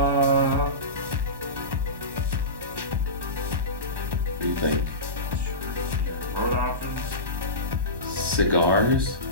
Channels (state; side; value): late; left; 1.1 ms